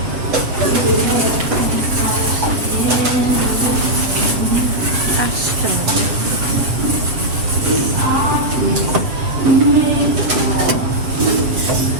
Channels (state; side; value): late; left; 7.5 ms